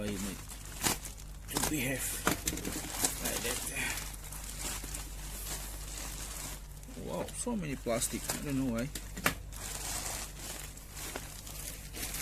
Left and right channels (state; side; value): identical; both; correlation 1.00